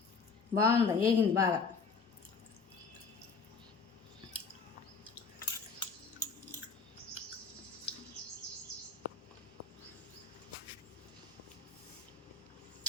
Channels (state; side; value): quieter; right; 5.1 dB